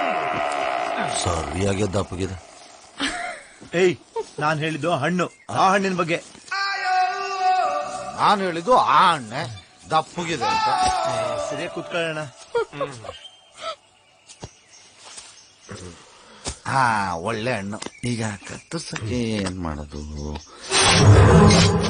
ಸರಿಯಾಗಿ ದಪ್ಪಗಿದೆ. ಏಯ್, ನಾನ್ ಹೇಳಿದ್ದು ಹಣ್ಣು, ಆ ಹಣ್ಣಿನ ಬಗ್ಗೆ. ನಾನು ಹೇಳಿದ್ದು ಆ ಹಣ್ಣೆ ದಪ್ಪಗಿದೆ ಅಂತ. ಸರಿಯಾಗಿ ಕೂತ್ಕೊಳ್ಳೋಣ. ಹಾ, ಒಳ್ಳೆ ಹಣ್ಣು. ಈಗ ಕತ್ತರ್ಸಕ್ಕೆ ಏನ್ ಮಾಡೋದು?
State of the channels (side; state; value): both; identical; correlation 1.00